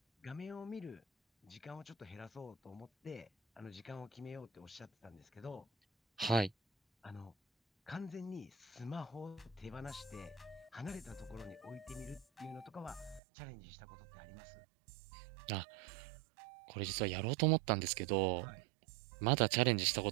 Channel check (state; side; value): drops out; left; at 13.2 s